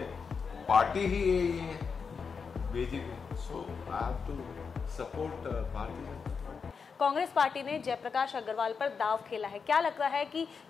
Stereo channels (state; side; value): quieter; right; 5.6 dB